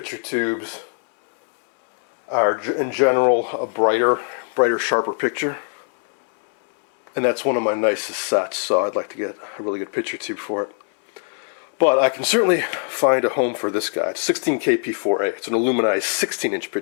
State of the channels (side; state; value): right; silent; 59 dB below the other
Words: tubes are, in general, a brighter, sharper picture. And that's one of my nicest sets, so I'd like to get a really good picture tube for it. But I can certainly find a home for this guy. It's 16KP4A. It's an aluminized 16-inch